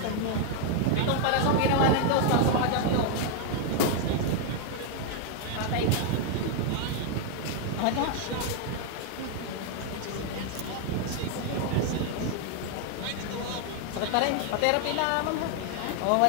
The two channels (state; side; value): different; both; correlation 0.00